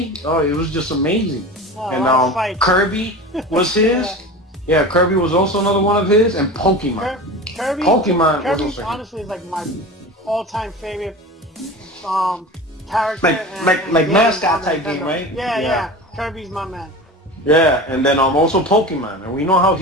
it was just amazing. And Kirby was his. Yeah, Kirby was also another one of his, and Pokemon. Kirby was honestly is like my all-time favorite character. Like mascot type game, right? Yeah. Kirby's my man. Yeah, and then also Pokemon, and we know how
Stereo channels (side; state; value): both; normal; correlation 0.32